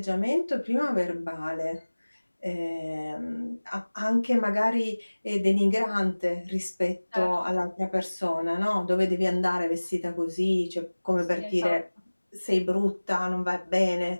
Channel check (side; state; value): both; inverted; correlation -1.00